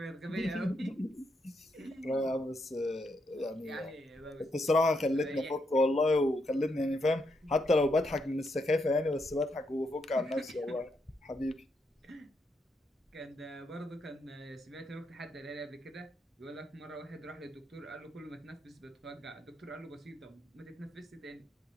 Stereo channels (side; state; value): both; normal; correlation 0.79